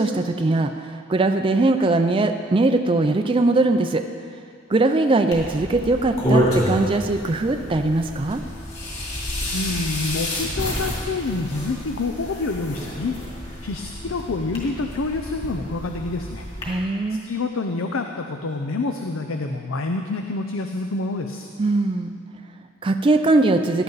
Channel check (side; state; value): both; normal; correlation 0.60